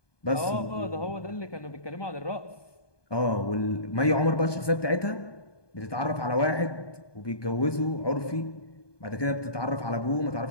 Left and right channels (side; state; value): right; late; 1.2 ms